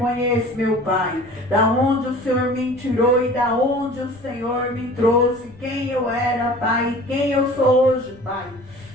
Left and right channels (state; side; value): noise; left; rumble, 23 dB below the sound